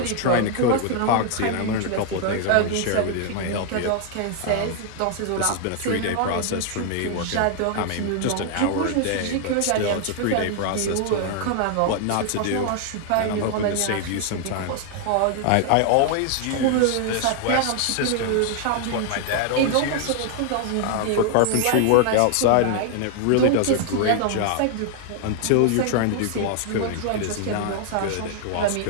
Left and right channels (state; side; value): different; both; correlation 0.00